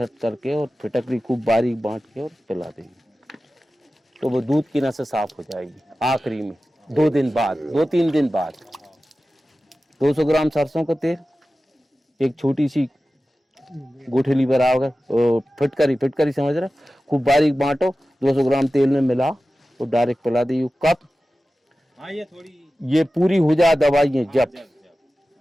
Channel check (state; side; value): normal; both; correlation 0.95